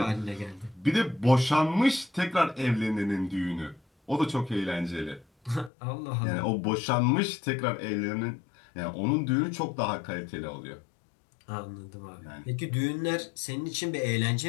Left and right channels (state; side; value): drops out; right; at 5.7 s